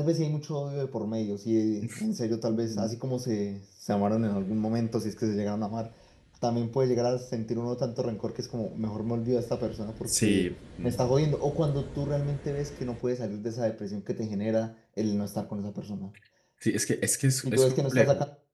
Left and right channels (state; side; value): identical; both; correlation 1.00